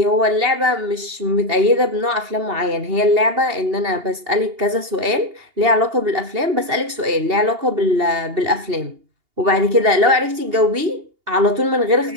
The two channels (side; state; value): left; late; 2.8 ms